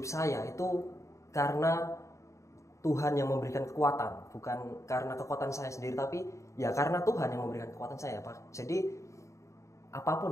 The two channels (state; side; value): late; right; 0.15 ms